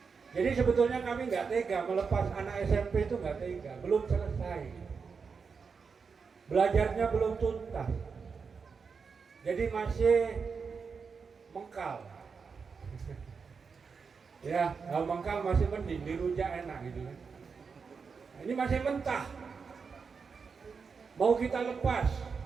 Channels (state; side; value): quieter; left; 5.4 dB